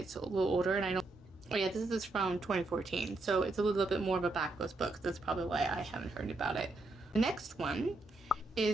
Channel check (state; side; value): quieter; left; 3.0 dB